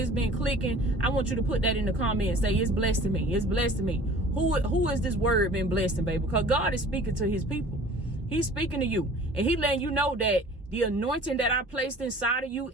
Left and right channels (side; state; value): both; normal; correlation 0.47